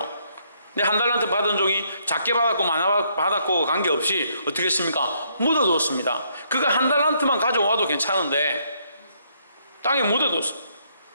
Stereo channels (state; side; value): inverted; both; correlation -0.71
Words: 근데 1달란트 받은 종이 작게 받았고 많이 받았고 관계없이 어떻게 했습니까? 묻어두었습니다. 그가 1달란트만 가져와도 괜찮은데 땅에 묻어두었어요.